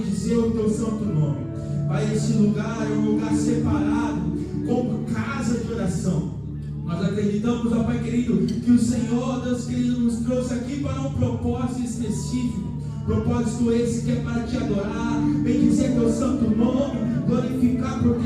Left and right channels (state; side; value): noise; left; hum, 28 dB below the sound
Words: o teu santo nome. Pai, esse lugar é um lugar separado como casa de oração. Nós acreditamos, ó Pai querido, que o Senhor, Deus querido, nos trouxe aqui para um propósito específico. Propósito esse que é para te adorar, bendizer teu santo nome, glorificar,